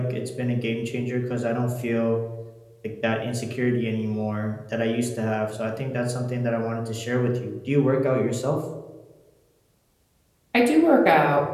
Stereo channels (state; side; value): identical; both; correlation 1.00